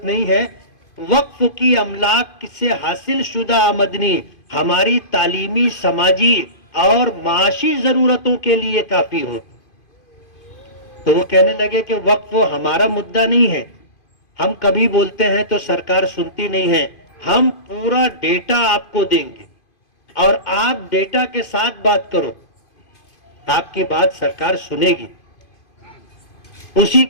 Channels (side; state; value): right; late; 2.5 ms